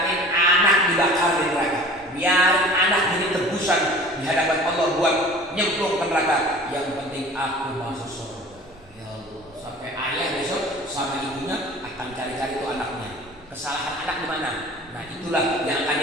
anak dibakar di neraka, biarin anak jadi tebusan di hadapan Allah buat nyemplung ke neraka. Yang penting aku masuk surga. Ya Allah, sampai ayah besok sama ibunya akan cari-cari tuh anaknya. Kesalahan anak di mana? Nah itulah yang akan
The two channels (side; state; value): both; normal; correlation 0.44